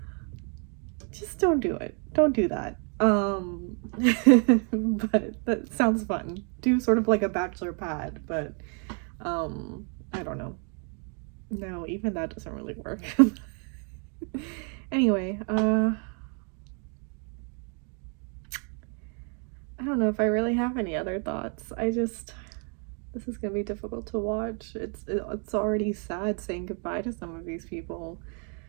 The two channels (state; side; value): quieter; left; 39.7 dB